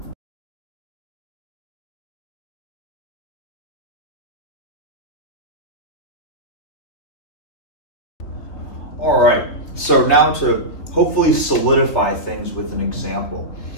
All right, so now to hopefully solidify things with an example,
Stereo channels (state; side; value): late; right; 3.3 ms